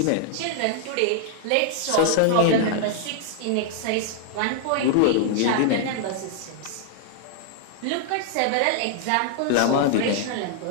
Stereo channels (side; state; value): both; different; correlation -0.01